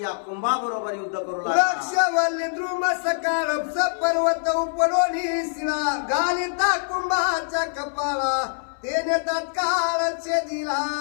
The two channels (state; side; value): silent; right; 62 dB below the other